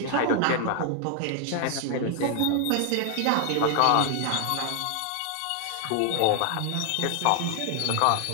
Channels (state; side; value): different; both; correlation 0.00